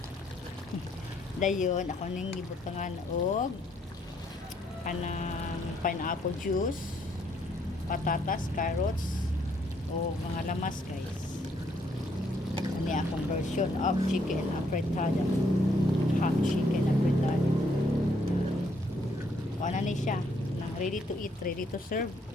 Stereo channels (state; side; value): normal; both; correlation 0.70